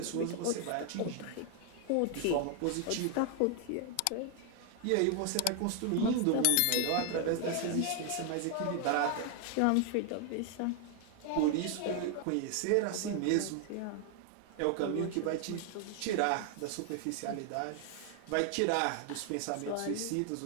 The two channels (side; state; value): both; different; correlation 0.00